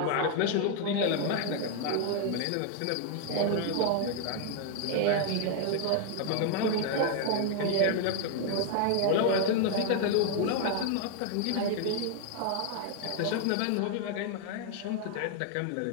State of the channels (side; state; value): both; different; correlation 0.00